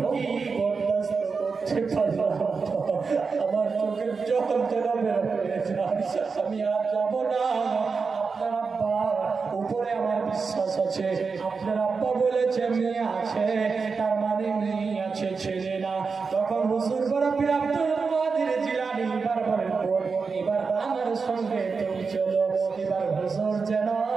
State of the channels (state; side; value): quieter; left; 4.9 dB